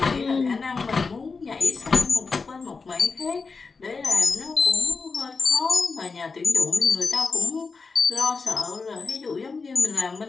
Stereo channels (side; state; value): right; quieter; 4.5 dB